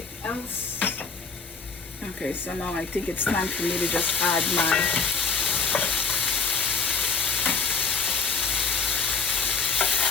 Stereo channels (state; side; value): quieter; right; 5.0 dB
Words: else. Okay, so now I think it's time for me to just add my